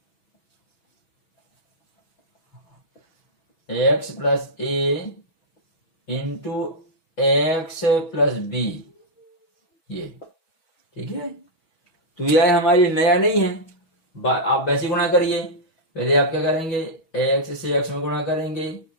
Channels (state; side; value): late; right; 6.2 ms